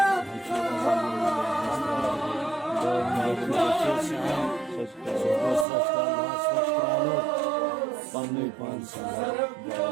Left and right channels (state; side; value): drops out; left; at 5.7 s